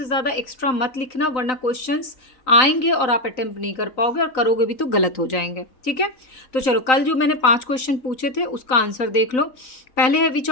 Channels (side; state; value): right; late; 3.9 ms